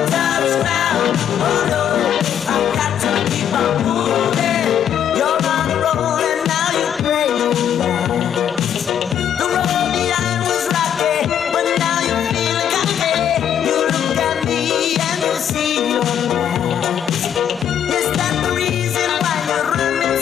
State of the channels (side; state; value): right; quieter; 9.3 dB